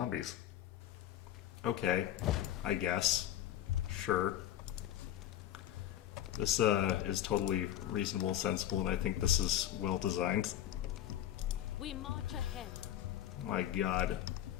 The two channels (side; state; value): right; quieter; 11.8 dB